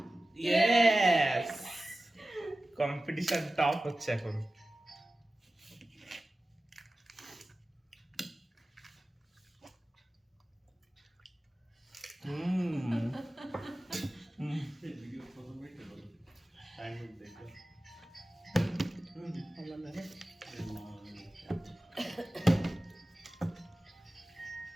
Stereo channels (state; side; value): normal; both; correlation 0.96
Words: यस কম্পিটিশন টপ হচ্ছে এখন। ये वीडियो फोटो में क्या बोलो टाइम में देखा হলো না রে।